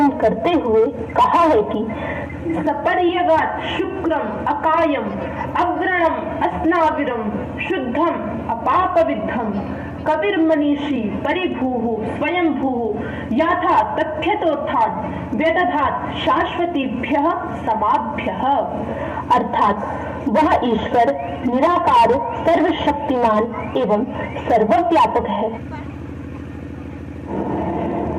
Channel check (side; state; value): both; identical; correlation 1.00